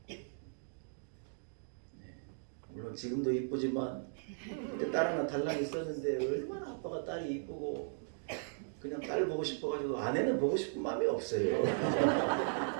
물론 지금도 이쁘지만 그때 딸 하나 달랑 있었는데 얼마나 아빠가 딸이 이쁘고 그냥 딸 보고 싶어가지고 아내는 보고 싶은 마음이 없어요.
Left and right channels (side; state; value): left; silent; digital silence